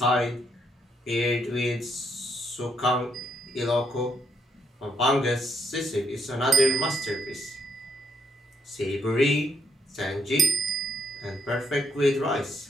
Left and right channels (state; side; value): normal; both; correlation 0.73